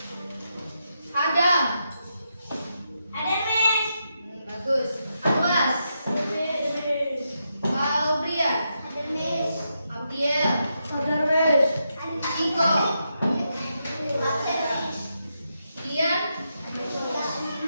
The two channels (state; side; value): inverted; both; correlation -0.84